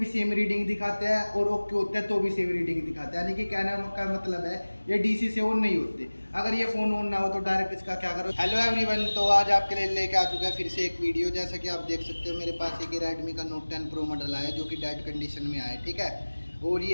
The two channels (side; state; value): both; inverted; correlation -1.00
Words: सेम रीडिंग दिखाते हैं और ओके होते हैं तो भी सेम रीडिंग दिखाते हैं। यानी कि कहने का मतलब है ये DC से ऑन नहीं होते। अगर ये फ़ोन ऑन ना हो तो डायरेक्ट इसका क्या करो। हेलो एवरीवन, तो आज आपके लिए लेके आ चुका है फिर से एक वीडियो। जैसा कि आप देख सकते हो मेरे पास एक रेडमी का नोट 10 प्रो मॉडल आया जो कि डेड कंडीशन में आया, ठीक है। और